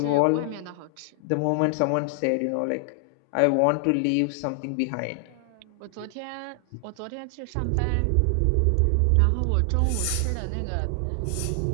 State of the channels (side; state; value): both; different; correlation 0.00